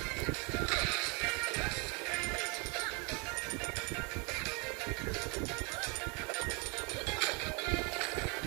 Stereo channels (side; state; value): left; quieter; 31.9 dB